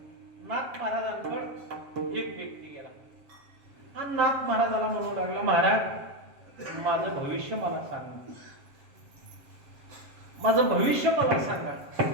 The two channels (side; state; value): left; late; 7.5 ms